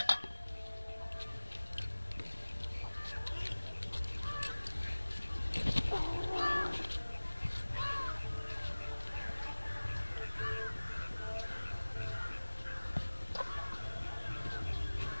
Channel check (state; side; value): inverted; both; correlation -1.00